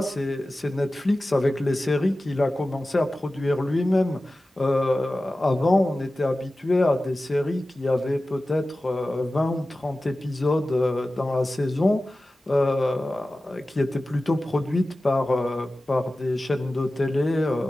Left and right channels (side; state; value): both; normal; correlation 0.95